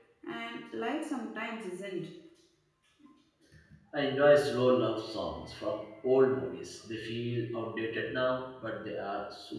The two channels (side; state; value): both; identical; correlation 1.00